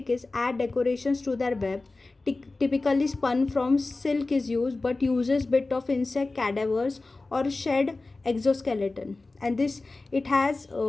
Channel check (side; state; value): right; quieter; 3.4 dB